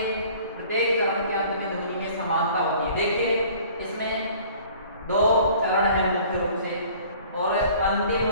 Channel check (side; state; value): both; inverted; correlation -0.51